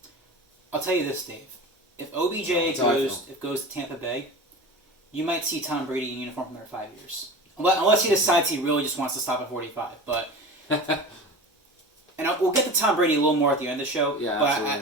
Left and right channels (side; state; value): both; normal; correlation 0.33